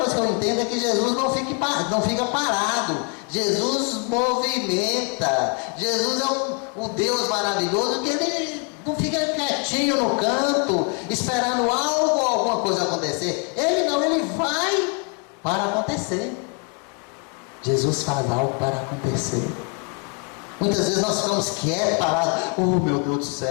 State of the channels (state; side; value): quieter; right; 37.3 dB